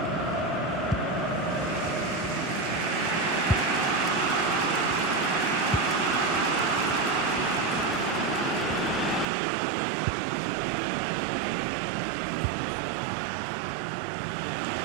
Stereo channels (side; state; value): left; drops out; at 9.2 s